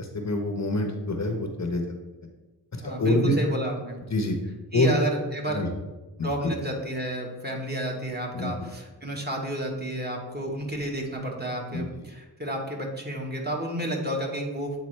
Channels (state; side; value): normal; both; correlation 0.33